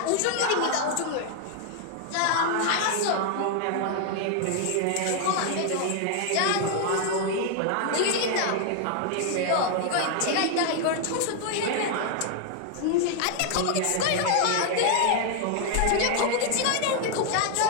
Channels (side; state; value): both; different; correlation 0.00